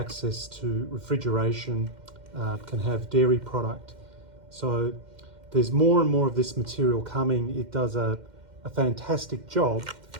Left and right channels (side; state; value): left; late; 2.1 ms